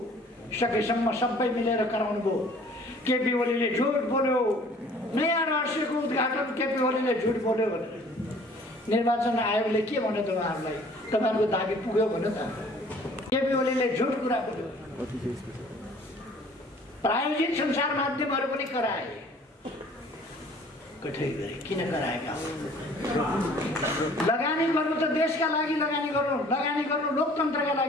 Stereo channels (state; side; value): normal; both; correlation 0.53